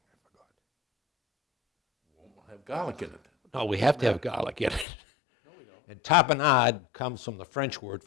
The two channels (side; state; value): right; drops out; at 4.9 s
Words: I forgot. We'll have garlic in it. No, we have to have garlic in it. No, we don't. And tapenade comes from the French word